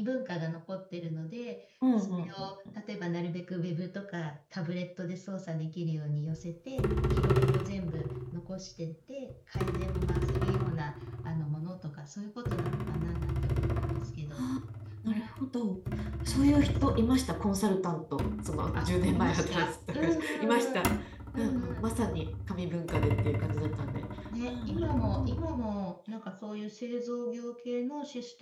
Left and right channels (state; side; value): identical; both; correlation 1.00